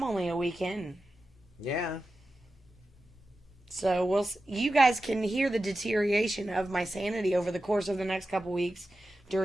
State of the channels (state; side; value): normal; both; correlation 0.93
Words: only a weekend. Yeah. So you guys can hear the deterioration of my sanity over the course of the next couple weeks